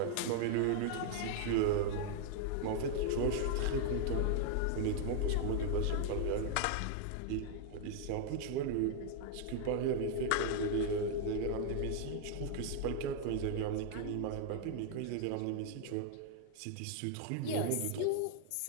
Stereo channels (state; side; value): different; both; correlation 0.00